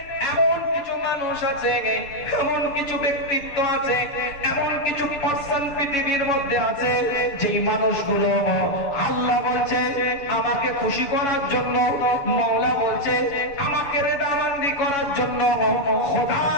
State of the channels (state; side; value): late; right; 6.8 ms